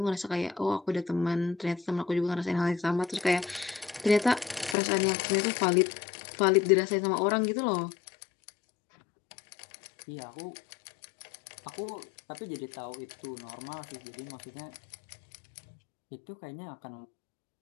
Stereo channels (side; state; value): right; drops out; at 4.8 s